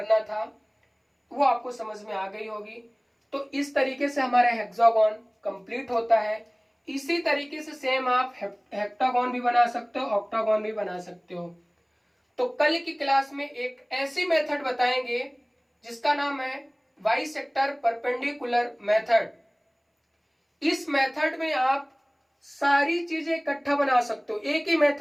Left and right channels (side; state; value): both; identical; correlation 1.00